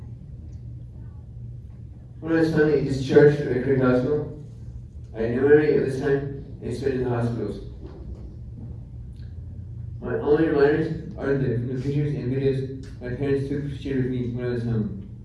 When I was finally discharged at Craig Hospital, I had no memory at this time and spent in the hospitals. My only reminders are the pictures and videos my parents took shared with me when I was home.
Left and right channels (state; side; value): identical; both; correlation 1.00